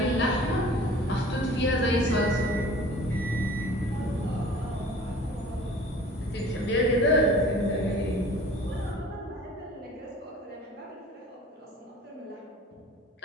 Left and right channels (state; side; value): normal; both; correlation 0.46